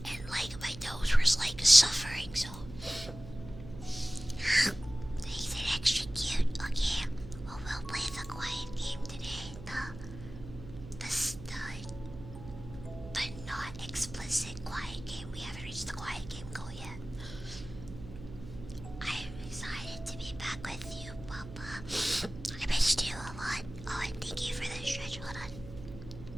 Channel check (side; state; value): right; noise; hum, 13 dB below the sound